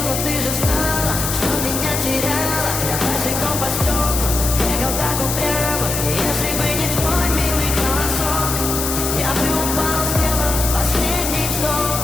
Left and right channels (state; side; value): noise; left; hiss, 3 dB below the sound